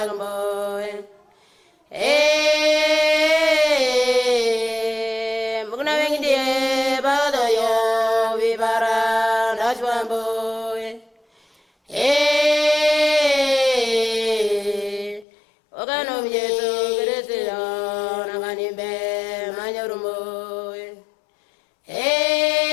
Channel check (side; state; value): right; drops out; at 15.2 s